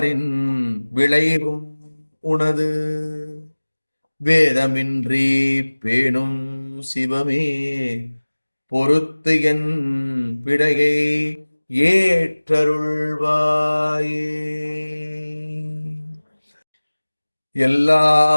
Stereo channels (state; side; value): inverted; both; correlation -1.00